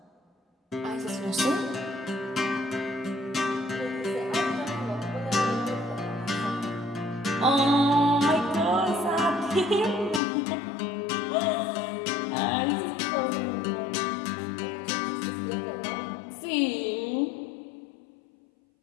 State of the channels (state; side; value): drops out; right; at 10.2 s